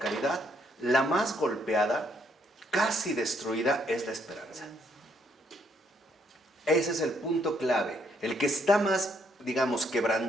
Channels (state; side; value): normal; both; correlation 0.71